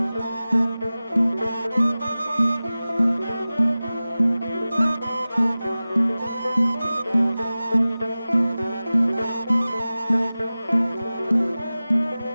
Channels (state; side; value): inverted; both; correlation -0.97